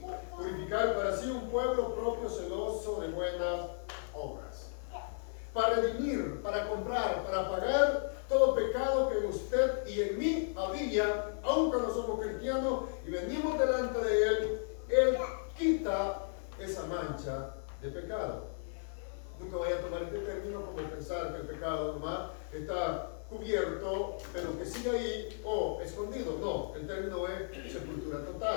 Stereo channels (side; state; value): right; silent; 55 dB below the other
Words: purificar para sí un pueblo propio celoso de buenas obras. Para redimir, para comprar, para pagar todo pecado que en usted y en mí había, aunque no somos cristianos y venimos delante de Él quita esa mancha de pecado. Nunca vaya a tomar este término como pensar que el pecado nomás está cubierto, pero que sigue ahí o escondido. No, el término es sepultura